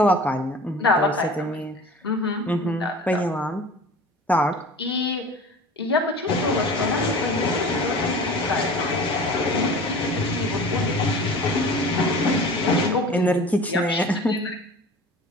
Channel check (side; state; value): both; normal; correlation 0.40